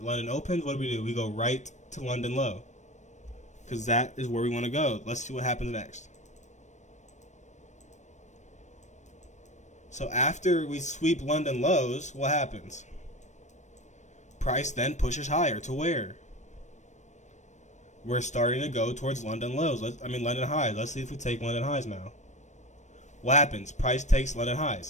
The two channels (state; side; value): late; right; 0.34 ms